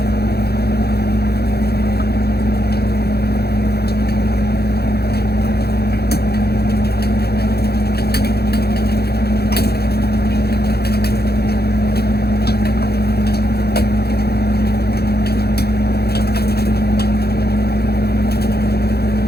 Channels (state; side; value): late; right; 0.46 ms